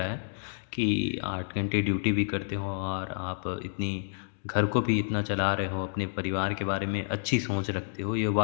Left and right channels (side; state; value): right; silent; digital silence